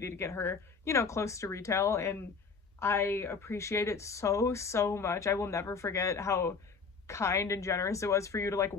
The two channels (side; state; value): right; quieter; 5.1 dB